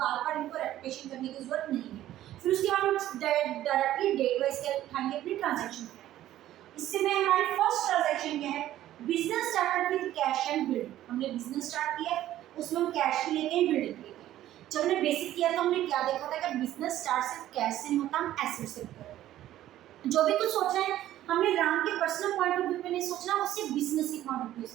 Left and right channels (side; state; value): left; quieter; 13.3 dB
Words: बार इनको रेपिटेशन करने की जरूरत नहीं है। फिर उसके बाद हम डायरेक्टली डेट वाइज क्या उठाएंगे? अपनी ट्रांजेक्शन। इससे में हमारी फर्स्ट ट्रांजेक्शन क्या है? Business started with cash and building. हमने बिजनेस स्टार्ट किया, उसमें हम कैश भी लेके बिल्डिंग। जब हमने बेसिक किया तो हमने क्या देखा था कि बिजनेस स्टार्ट सिर्फ कैश से नहीं होता, हम एसेट से करते। जो भी कुछ सोचना है हमने राम के पर्सनल पॉइंट ऑफ व्यू में नहीं सोचना, उससे बिजनेस के पॉइंट ऑफ व्यू